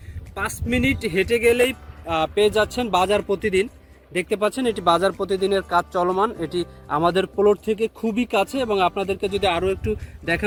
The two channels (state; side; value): identical; both; correlation 1.00